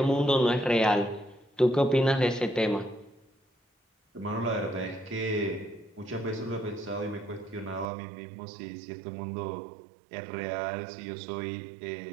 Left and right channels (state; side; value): drops out; left; at 7.9 s